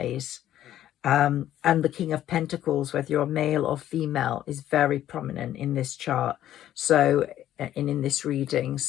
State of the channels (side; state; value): right; quieter; 12.2 dB